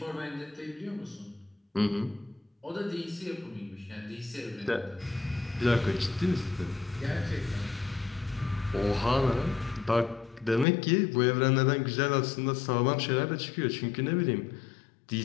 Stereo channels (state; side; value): drops out; right; at 10.7 s